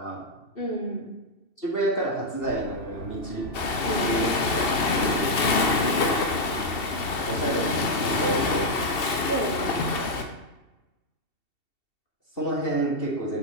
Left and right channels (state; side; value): late; right; 2.7 ms